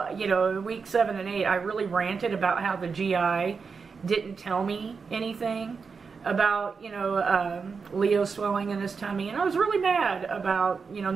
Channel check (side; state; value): left; quieter; 5.3 dB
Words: week 7 and 8, I really ranted about how the GI didn't tell me anything about Leo swelling in his tummy, and I was really mad about